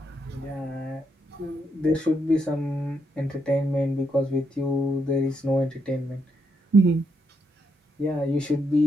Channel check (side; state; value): both; normal; correlation 0.79